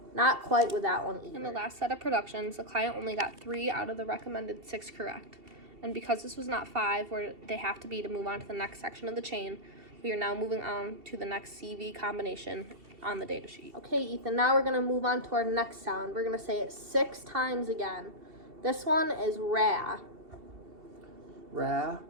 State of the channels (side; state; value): left; late; 2.7 ms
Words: Not quite with that one either. In the last set of productions, the client only got 3 out of the recommended 6 correct. And because this was not 5 where they have to be to move on to the next section of the chain, we are now moving on to the next CV combination on the data sheet. Okay, Ethan, now we're going to move on to our next sound. We're going to say it 6 times again. This one is ra. Ra.